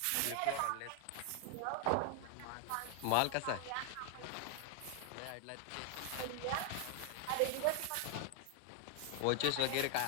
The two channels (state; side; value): different; both; correlation 0.00